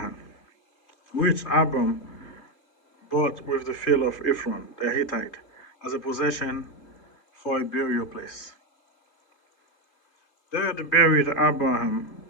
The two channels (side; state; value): right; late; 3.2 ms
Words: which Abram bought with the field of Ephron the Hittite as a possession for a burial place. There they buried Abraham